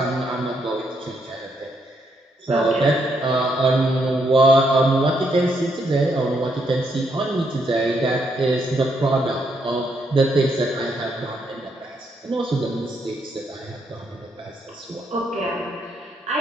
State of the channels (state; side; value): normal; both; correlation 0.76